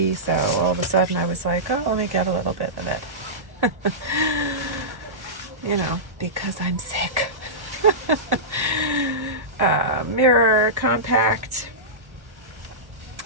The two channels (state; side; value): late; left; 1.1 ms